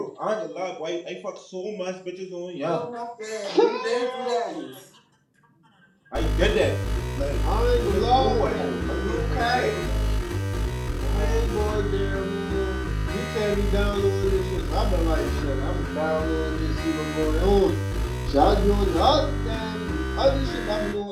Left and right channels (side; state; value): both; identical; correlation 1.00